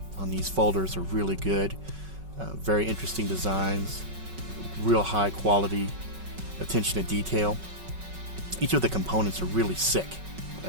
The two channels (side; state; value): left; late; 5.3 ms